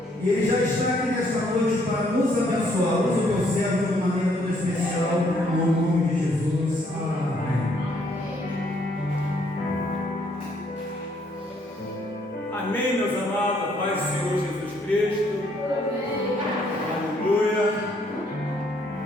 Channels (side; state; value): both; normal; correlation 0.68